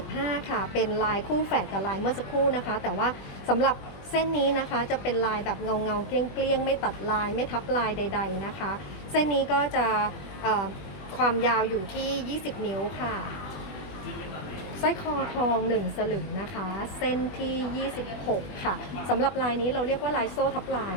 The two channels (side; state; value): right; late; 20 ms